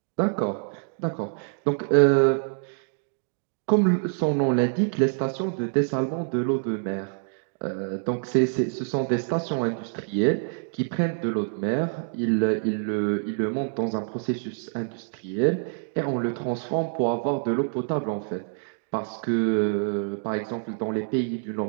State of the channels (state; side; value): silent; left; digital silence